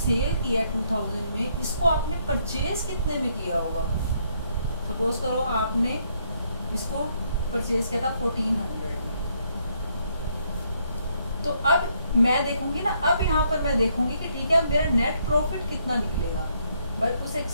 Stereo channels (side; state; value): both; inverted; correlation -0.72